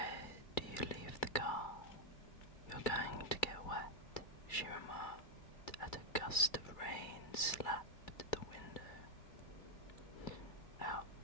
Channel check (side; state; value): right; late; 2.3 ms